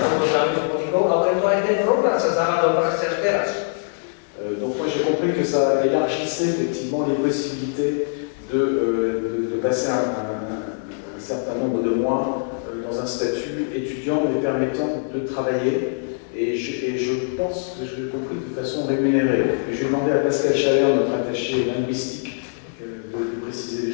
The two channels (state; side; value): silent; right; 64 dB below the other